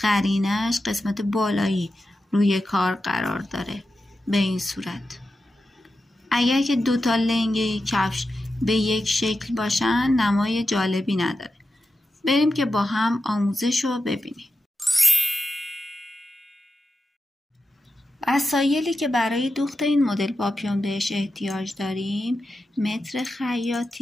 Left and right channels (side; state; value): both; normal; correlation 0.90